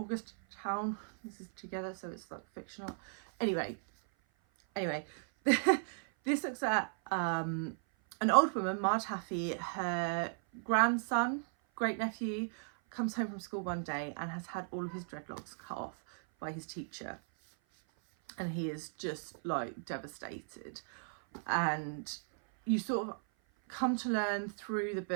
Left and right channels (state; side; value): silent; left; 54 dB below the other